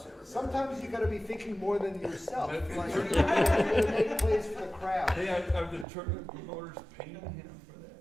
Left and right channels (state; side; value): drops out; left; at 5.9 s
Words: it. Sometimes you gotta be thinking more than yourself. Like, you gotta make plays for the crowd. Hey, are the tournament promoters paying him for